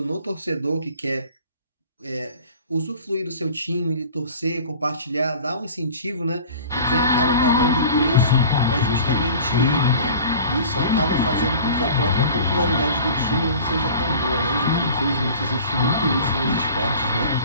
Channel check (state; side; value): inverted; both; correlation -0.43